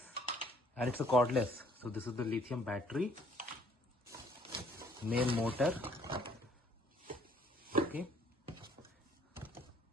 and it's a cordless. So this is the lithium battery. Main motor, okay,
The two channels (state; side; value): normal; both; correlation 0.61